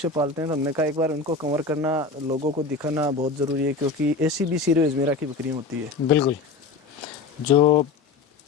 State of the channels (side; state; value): right; quieter; 4.1 dB